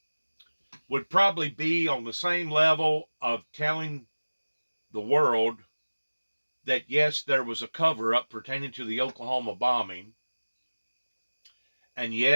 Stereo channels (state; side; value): inverted; both; correlation -1.00